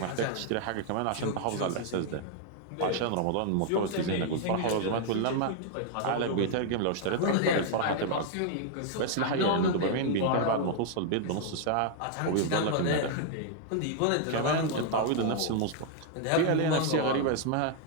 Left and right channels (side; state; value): both; different; correlation -0.01